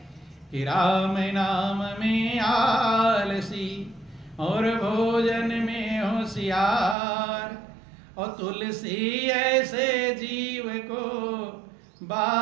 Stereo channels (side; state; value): left; drops out; at 7.0 s